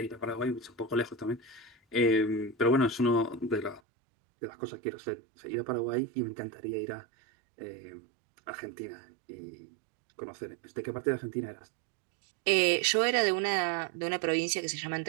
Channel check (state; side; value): drops out; left; at 3.8 s